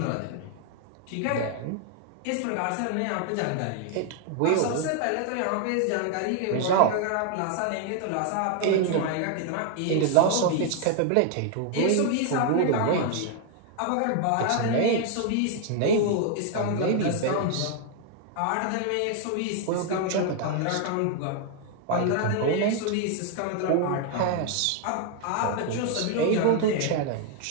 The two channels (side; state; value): both; different; correlation 0.00